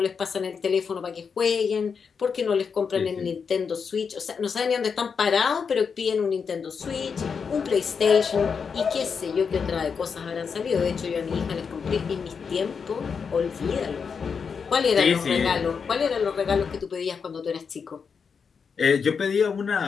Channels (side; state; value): right; quieter; 6.0 dB